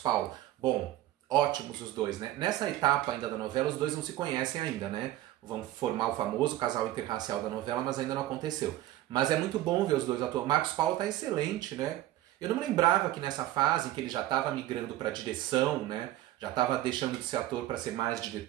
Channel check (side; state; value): left; quieter; 14.6 dB